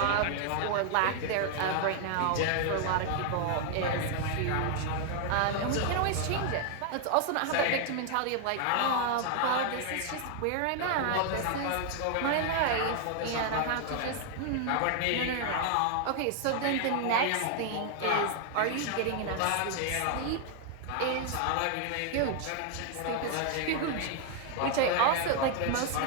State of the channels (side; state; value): both; different; correlation 0.00